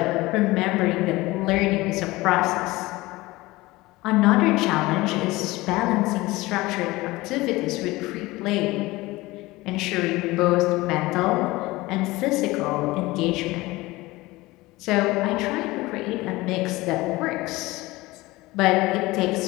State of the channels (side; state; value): right; quieter; 20.2 dB